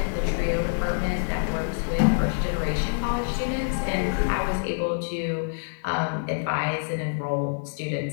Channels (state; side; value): silent; right; 61 dB below the other